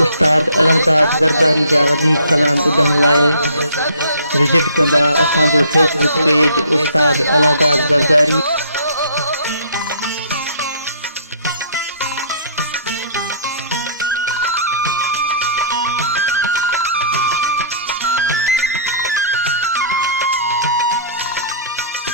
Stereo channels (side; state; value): both; inverted; correlation -0.54